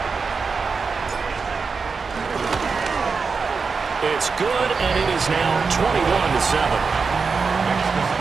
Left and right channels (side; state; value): left; quieter; 4.9 dB